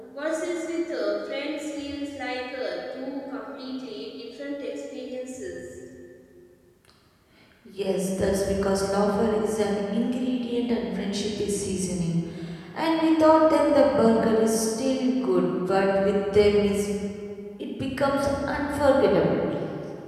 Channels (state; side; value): identical; both; correlation 1.00